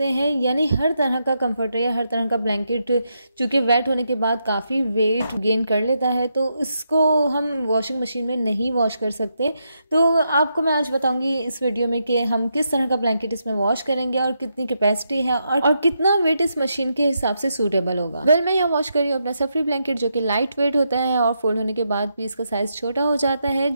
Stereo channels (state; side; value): inverted; both; correlation -0.82